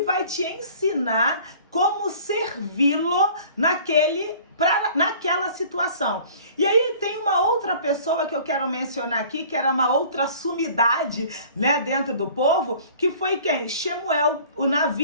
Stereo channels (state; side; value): inverted; both; correlation -0.49